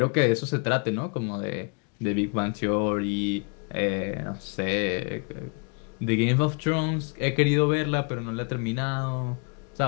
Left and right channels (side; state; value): right; quieter; 38.8 dB